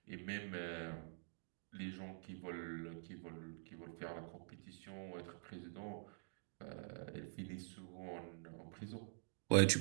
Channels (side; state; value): left; silent; digital silence